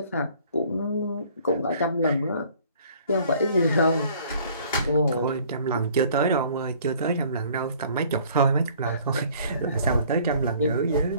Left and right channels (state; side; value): inverted; both; correlation -0.55